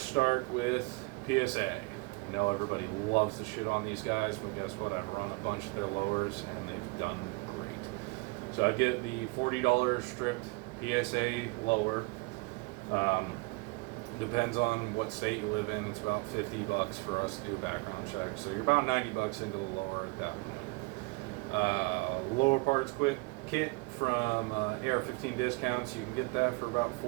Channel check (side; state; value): left; quieter; 26.8 dB